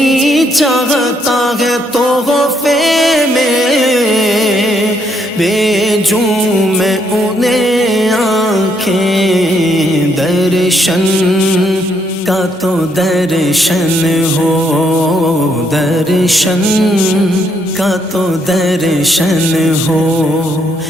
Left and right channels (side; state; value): both; normal; correlation 0.73